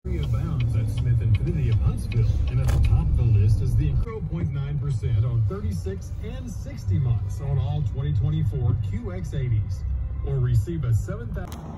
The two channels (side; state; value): both; identical; correlation 1.00